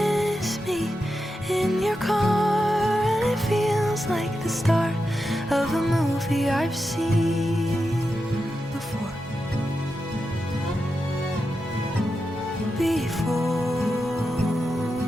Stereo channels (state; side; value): normal; both; correlation 0.89